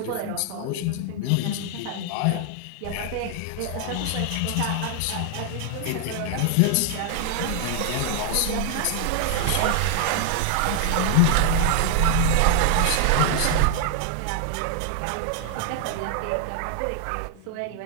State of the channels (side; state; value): both; different; correlation 0.00